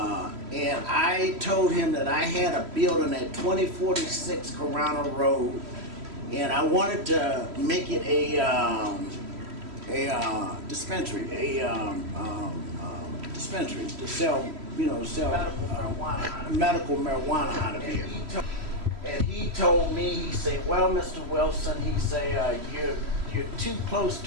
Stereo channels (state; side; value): late; left; 3.1 ms